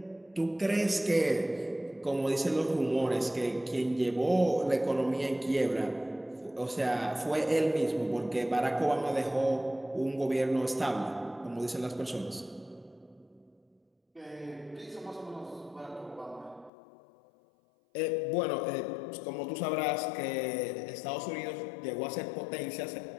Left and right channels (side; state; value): right; drops out; at 16.7 s